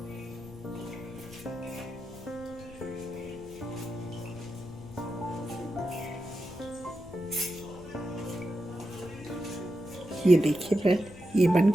ये देखिए फ्रेंड, ये बन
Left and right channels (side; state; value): left; noise; rumble, 18 dB below the sound